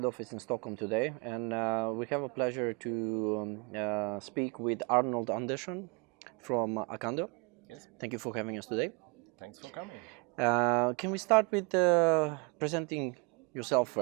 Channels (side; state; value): left; quieter; 30.3 dB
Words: office in Stockholm today, and we have a pleasure to speak with Arnold Andersson from Acando. Yes, Thank you for having us today. thanks for coming. Can we start with presenting yourself